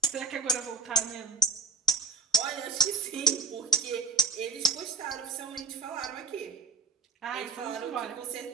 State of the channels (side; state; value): left; quieter; 3.1 dB